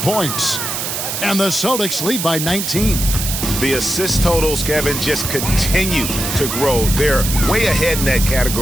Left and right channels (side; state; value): right; noise; hiss, 3 dB below the sound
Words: And the Celtics lead by 19. The assist totals, Kevin, just continue to grow. They're way ahead in that